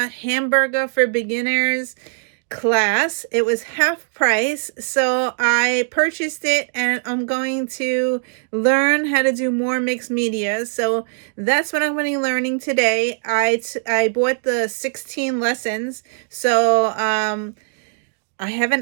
hamburger for beginners class. It was half price, so I purchased it, and I'm going to learn how to do more mixed media. So that's what I'm going to be learning today. I bought the 16 lessons, so I have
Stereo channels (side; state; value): left; silent; digital silence